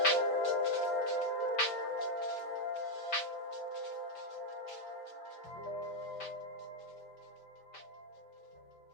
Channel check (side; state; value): right; late; 5.1 ms